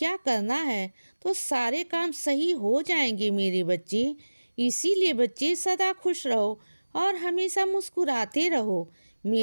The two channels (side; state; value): both; inverted; correlation -1.00